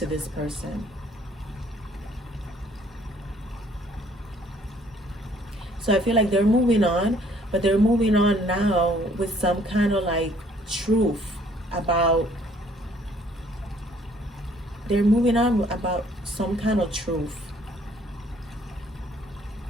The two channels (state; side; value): normal; both; correlation 0.61